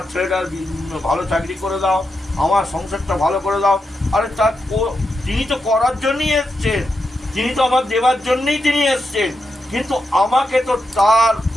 ছেলেটার ভালো চাকরি করে দাও, আমার সংসারটা ভালো করে দাও। আরে তার তিনি তো করার জন্যই এসছেন, তিনি তো আমার দেবার জন্যই তিনি এসছেন, কিন্তু আমাকে তো তার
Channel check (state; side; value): normal; both; correlation 0.86